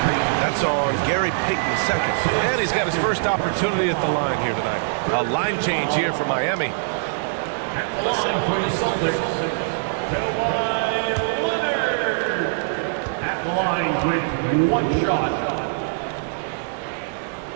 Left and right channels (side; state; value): left; silent; digital silence